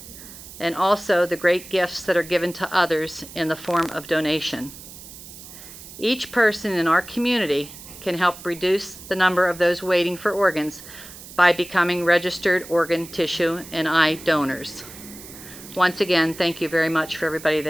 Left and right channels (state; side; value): noise; right; hiss, 16 dB below the sound